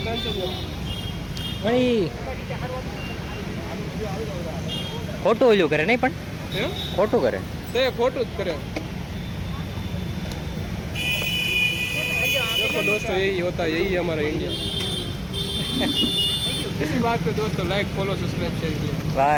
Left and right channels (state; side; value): identical; both; correlation 1.00